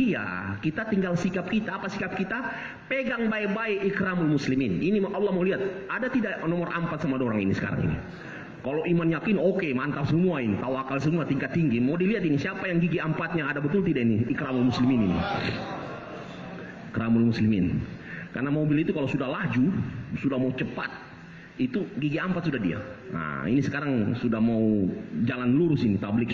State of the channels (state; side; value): identical; both; correlation 1.00